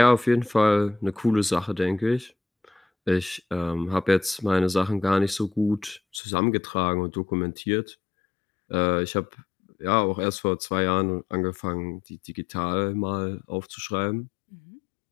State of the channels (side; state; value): right; drops out; at 6.2 s